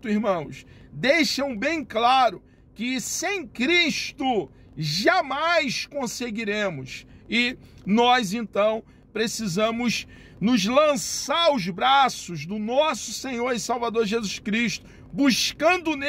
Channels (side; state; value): both; identical; correlation 1.00